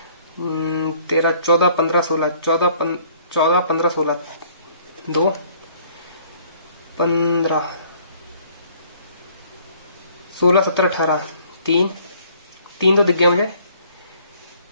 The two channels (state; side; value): inverted; both; correlation -0.59